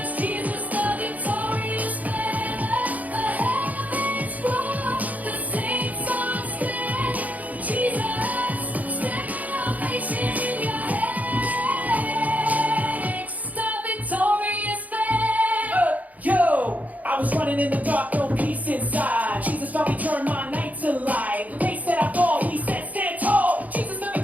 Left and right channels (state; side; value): late; left; 0.076 ms